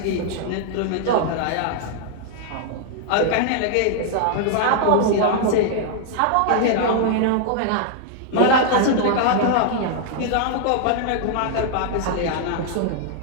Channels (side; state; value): both; different; correlation 0.00